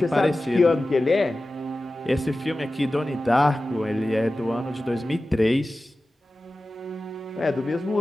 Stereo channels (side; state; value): both; normal; correlation 0.95